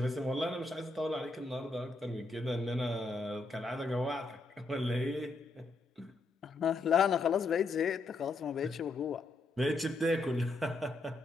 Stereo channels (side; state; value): right; quieter; 3.2 dB